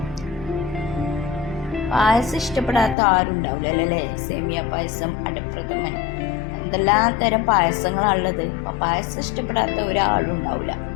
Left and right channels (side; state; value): right; drops out; at 3.0 s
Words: പായസം ഇഷ്ടപ്പെടാത്ത ആരും ഉണ്ടാവില്ല അല്ലേ? സേമിയ പായസം, അടപ്രഥമൻ, എന്തെല്ലാം തരം പായസങ്ങളാണുള്ളത്. അപ്പോൾ പായസം ഇഷ്ടപ്പെടാത്ത ഒരാളും ഉണ്ടാവില്ല.